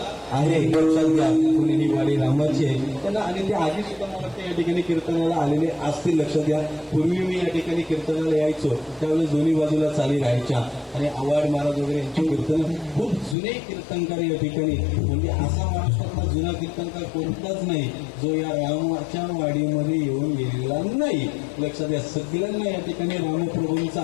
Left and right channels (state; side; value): drops out; right; at 13.4 s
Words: आहे. लक्षात घ्या, कुणी ही वाडी रामाची आहे त्यांना. आणि ते आधी सुद्धा मला वाटतं या ठिकाणी कीर्तनाला आलेले असतील. लक्षात घ्या, पूर्वी मी या ठिकाणी कीर्तनाला यायचो त्यावेळेस दोन्ही बाजूला चाली राहायच्या. आणि आवाड महाराज वगैरे यांची कीर्तन खूप जुने कीर्तनकार या ठिकाणी. म्हणजे असा महाराष्ट्रातला जुना कीर्तनकार कोणताच नाही जो या रामाच्या वाडीमध्ये येऊन गेलेला नाही. लक्षात घ्या, सगळ्यांना या ठिकाणी